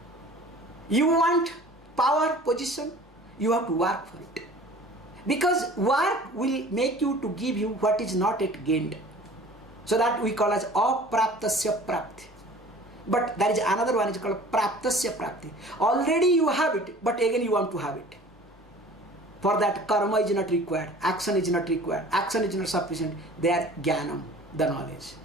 You want power, position, you have to work for it. Because work will make you to give you what is not yet gained. So that we call as apraptasya prapti. But there is another one, is called praptasya prapti. Already you have it, but again you want to have it. For that, karma is not required, action is not required, action is not sufficient. They are jnanam, the knowledge.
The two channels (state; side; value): normal; both; correlation 0.46